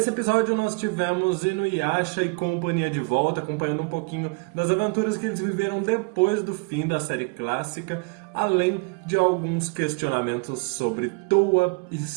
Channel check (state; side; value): quieter; left; 31.4 dB